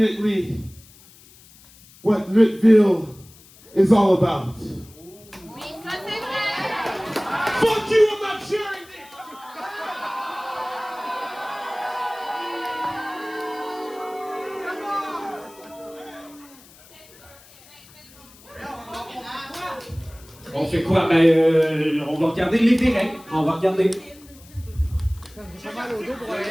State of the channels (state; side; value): noise; left; hiss, 24 dB below the sound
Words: what Lutville is all about. Oui, ça c'est vrai. Fuck you, I'm not sharing this! On fait quoi? On va regarder les règles. On va regarder.